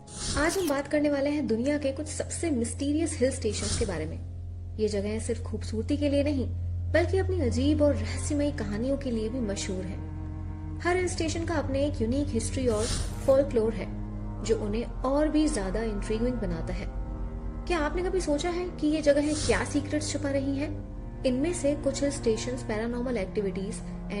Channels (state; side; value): identical; both; correlation 1.00